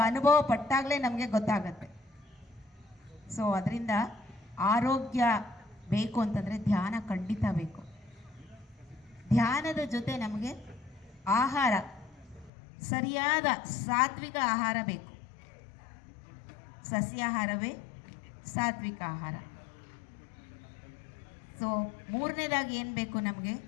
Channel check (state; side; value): drops out; right; at 12.5 s